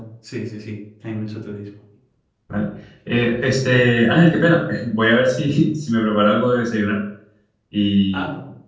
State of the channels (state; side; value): identical; both; correlation 1.00